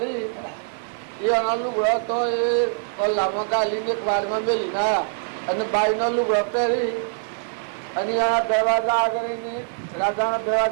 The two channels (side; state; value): left; silent; 58 dB below the other